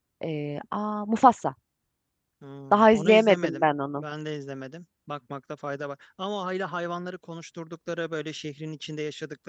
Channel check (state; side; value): identical; both; correlation 1.00